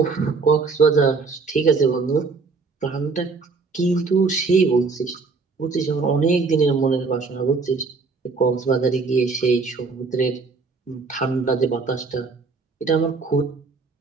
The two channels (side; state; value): left; quieter; 4.4 dB